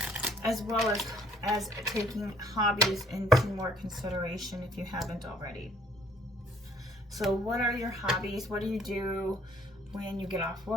as well as taking hobbies into more consideration if you haven't already. So what are your hobbies? What do you do when you get off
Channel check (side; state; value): both; normal; correlation 0.61